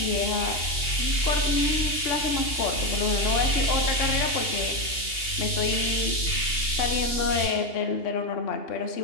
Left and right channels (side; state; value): right; late; 2.8 ms